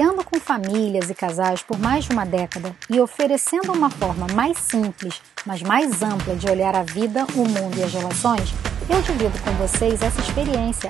com famílias e casais por mais de uma década e oferecendo uma forma mais simples, mas mais ampla de olhar a vida, o mundo e as relações, eu divido com vocês essa experiência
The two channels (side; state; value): left; quieter; 8.5 dB